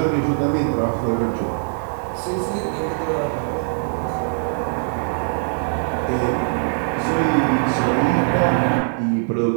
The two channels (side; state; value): left; silent; digital silence